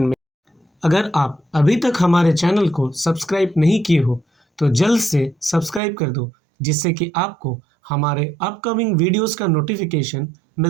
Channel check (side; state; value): left; drops out; at 5.8 s